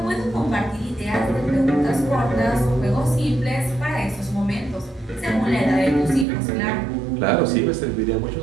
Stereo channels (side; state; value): left; drops out; at 6.2 s